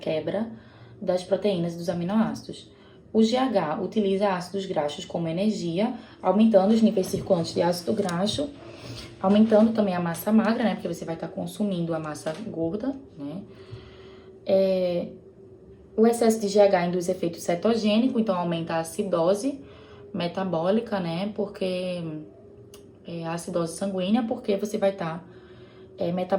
das proteínas e dos aminoácidos. O GH utiliza ácidos graxos como energia, aumentando os níveis circulantes de ácido graxo, aumentando também a massa magra, né, porque você vai estar consumindo a massa gorda, né. O excesso de GH induz efeito cetogênico, então aumenta a acidose metabólica, né? Porque a acidose sanguínea, porque você vai estar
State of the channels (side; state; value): both; identical; correlation 1.00